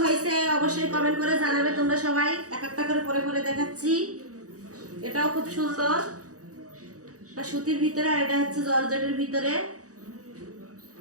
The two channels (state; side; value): late; left; 0.66 ms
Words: হয়েছে অবশ্যই কমেন্ট করে জানাবে তোমরা সবাই। এক একটা করে পরে পরে দেখাচ্ছি। এটাও খুব সুন্দর, এটা সুতির ভিতরে, আর এটা হচ্ছে জর্জেটের ভিতরে।